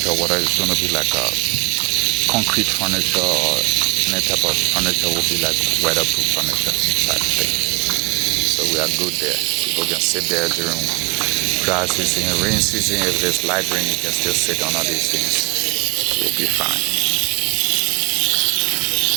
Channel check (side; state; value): left; quieter; 29.8 dB